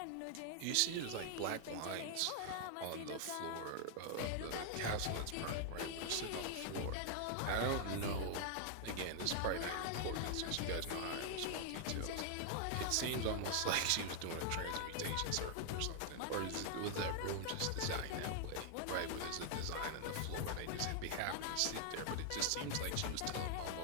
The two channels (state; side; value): different; both; correlation 0.00